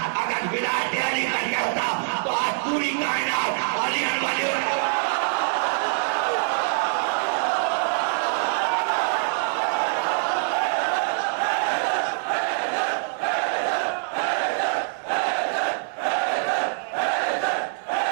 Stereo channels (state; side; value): silent; left; 57 dB below the other